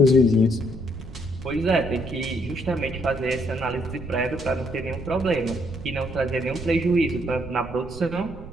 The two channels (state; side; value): noise; right; rumble, 14 dB below the sound